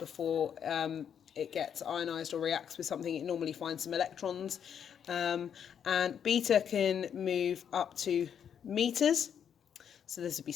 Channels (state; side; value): quieter; right; 8.3 dB